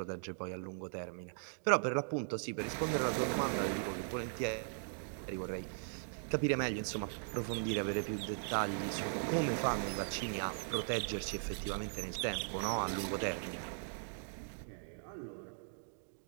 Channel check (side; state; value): left; silent; digital silence